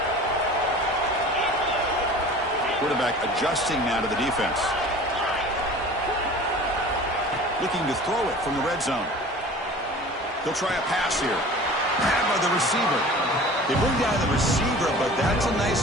Quarterback adjusting now to the defense. Looking to throw it from the red zone. He'll try a pass here. Grabbed by the receiver. They bring down the receiver, but that's a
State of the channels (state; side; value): normal; both; correlation 0.42